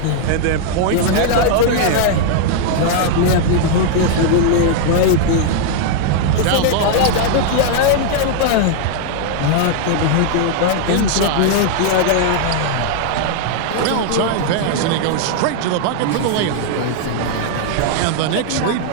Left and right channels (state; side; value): different; both; correlation -0.01